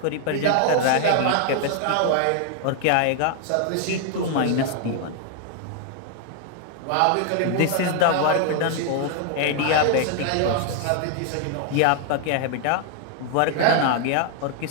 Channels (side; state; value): both; different; correlation 0.00